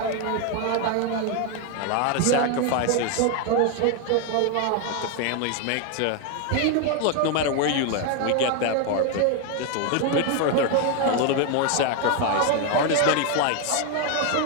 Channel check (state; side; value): different; both; correlation 0.01